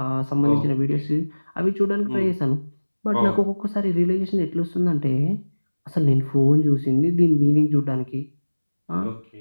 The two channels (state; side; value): inverted; both; correlation -1.00